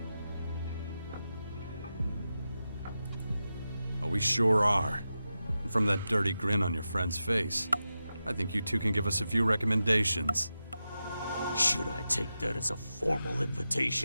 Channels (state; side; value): inverted; both; correlation -0.91